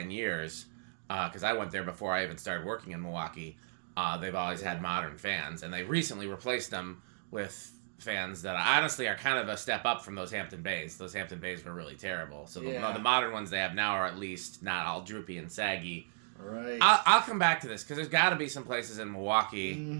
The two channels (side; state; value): left; silent; digital silence